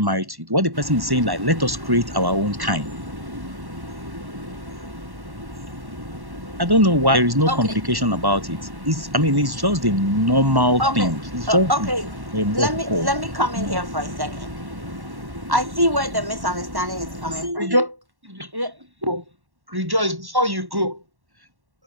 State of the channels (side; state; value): left; late; 1.1 ms